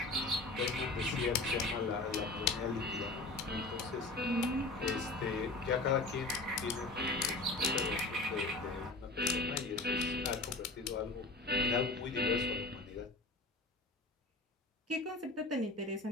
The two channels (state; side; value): quieter; right; 3.1 dB